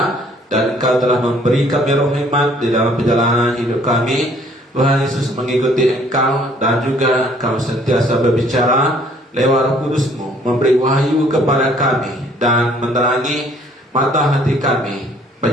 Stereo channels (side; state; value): both; normal; correlation 0.60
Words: Dan Engkau telah memberi kami roh hikmat di dalam perjalanan hidup kami. Tuhan Yesus mengikuti Engkau, dan juga Engkau sentiasa berbicara lewat Roh Kudus-Mu, memberi wahyu kepada kami dan menerangi mata hati kami,